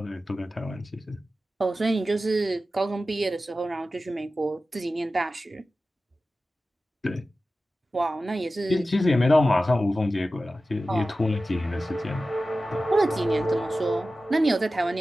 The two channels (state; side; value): normal; both; correlation 0.94